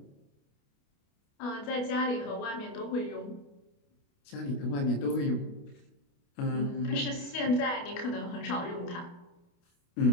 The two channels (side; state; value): right; late; 29 ms